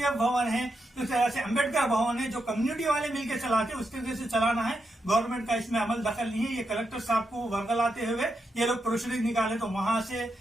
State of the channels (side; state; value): both; normal; correlation 0.84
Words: भवन है, इस तरह से अम्बेडकर भवन है, जो कम्युनिटी वाले मिलकर चलाते उस तरीके से चलाना है। गवर्नमेंट का इसमें अमल दखल नहीं है। ये कलेक्टर साहब को वर्गलाते हुए ये लोग प्रोसीडिंग निकाले तो वहां से